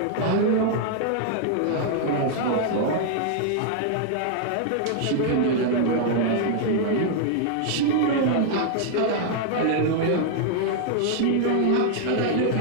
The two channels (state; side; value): different; both; correlation -0.01